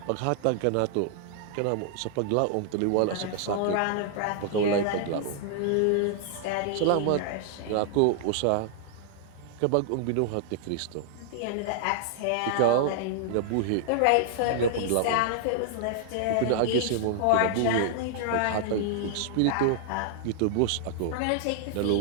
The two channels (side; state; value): both; different; correlation -0.01